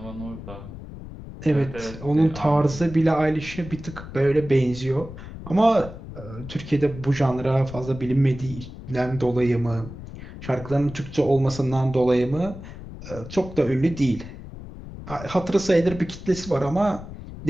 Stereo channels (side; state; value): left; noise; rumble, 13 dB below the sound